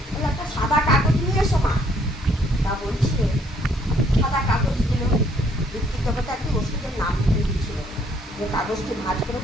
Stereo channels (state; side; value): normal; both; correlation 0.65